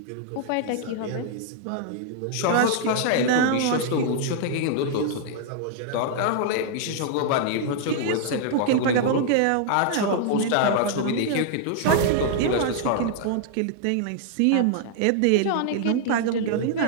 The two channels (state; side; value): different; both; correlation -0.01